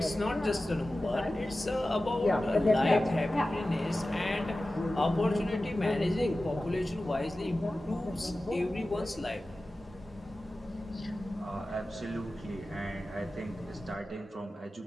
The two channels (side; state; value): both; normal; correlation 0.95